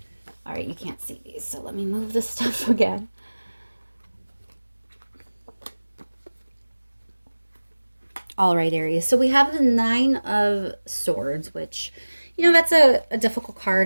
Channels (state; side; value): inverted; both; correlation -1.00